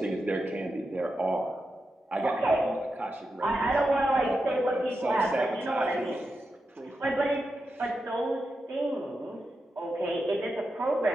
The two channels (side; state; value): both; normal; correlation 0.88